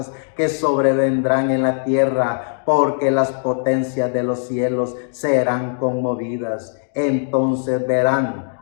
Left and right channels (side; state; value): right; silent; digital silence